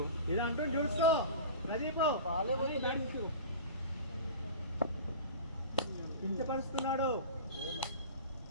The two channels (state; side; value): inverted; both; correlation -0.35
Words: ఇది అంటూ చూసుకో కించపరుస్తున్నాడు.